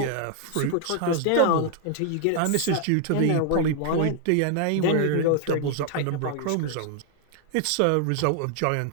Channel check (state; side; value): different; both; correlation 0.00